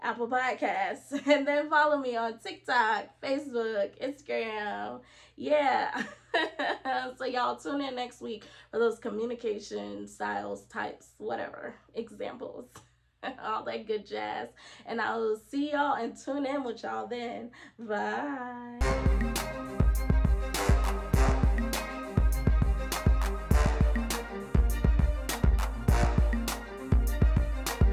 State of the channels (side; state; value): both; identical; correlation 1.00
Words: Podcasts. And then follow me on TikTok, Facebook, Instagram. Yeah. So y'all tune in next week for those communication styles, types, whatever, examples. All that good jazz. And I will see y'all and tune in with y'all then. Bye.